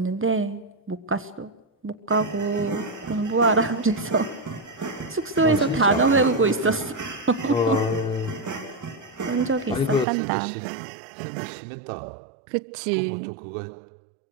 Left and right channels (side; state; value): left; drops out; at 10.1 s